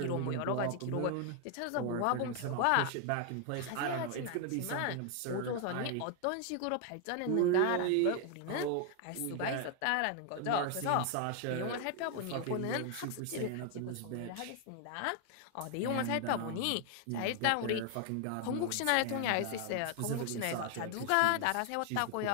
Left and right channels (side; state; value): both; different; correlation 0.00